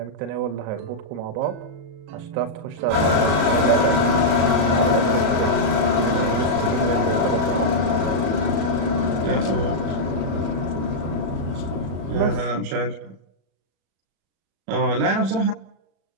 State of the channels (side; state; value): left; late; 37 ms